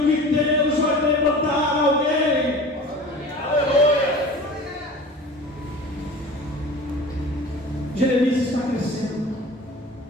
que Deus vai levantar alguém. Jeremias está crescendo.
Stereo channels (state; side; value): normal; both; correlation 0.39